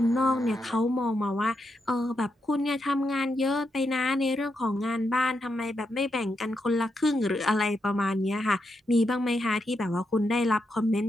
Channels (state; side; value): normal; both; correlation 0.83